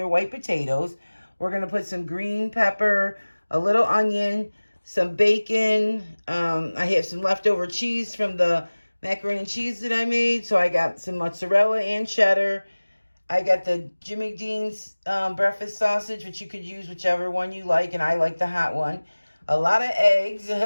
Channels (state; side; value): inverted; both; correlation -1.00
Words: white potatoes. We're going to put some green pepper, a little onion, some bacon. I have some leftover cheese from the macaroni and cheese that I made. So I got some mozzarella and cheddar. I got the Jimmy Dean's breakfast sausage, which you could use whichever one you like, and I like the hot one. A lot of eggs,